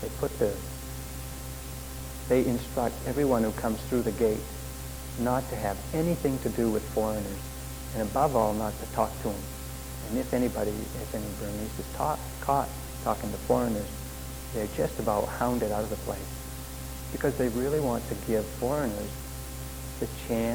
They instruct everyone who comes through the gate not to have anything to do with foreigners, and above all, not to talk to them. And if any Burmese is caught talking to foreigners, they're just about hounded out of the place, because they really want to give foreigners the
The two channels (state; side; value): identical; both; correlation 1.00